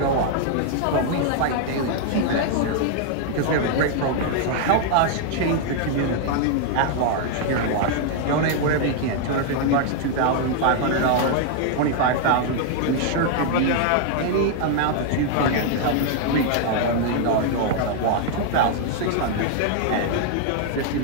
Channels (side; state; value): both; different; correlation 0.00